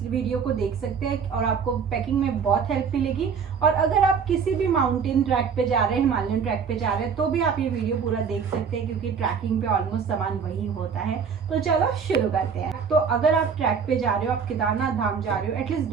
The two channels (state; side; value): quieter; left; 6.4 dB